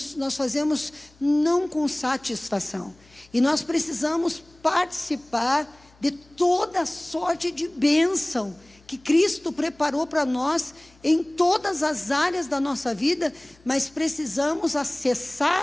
nós fazemos não com satisfação. E nós precisamos participar de toda sorte de bênção que Cristo preparou para nós em todas as áreas da nossa vida, mas precisamos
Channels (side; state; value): left; noise; hum, 30 dB below the sound